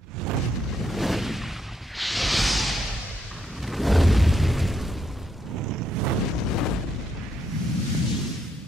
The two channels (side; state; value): both; normal; correlation 0.76